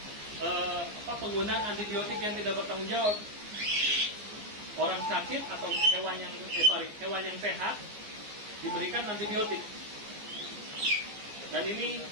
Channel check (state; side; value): late; left; 14 ms